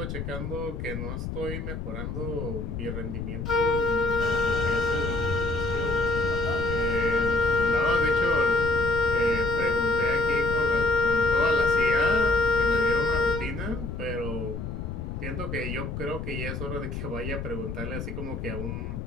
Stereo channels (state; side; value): noise; left; rumble, 6 dB below the sound